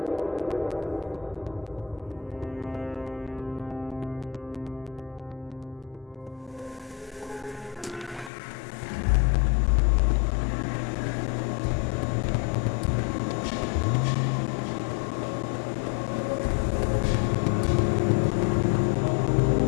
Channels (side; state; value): right; drops out; at 8.3 s